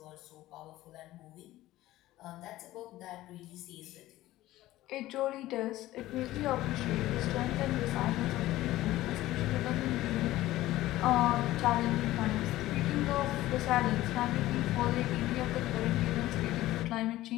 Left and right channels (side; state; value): right; quieter; 16.0 dB